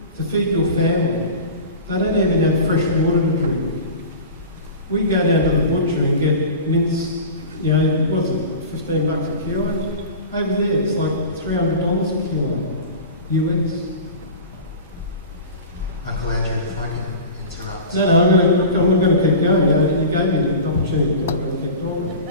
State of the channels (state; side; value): inverted; both; correlation -0.34